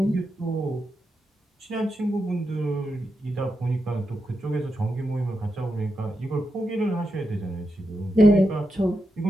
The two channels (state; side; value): normal; both; correlation 0.87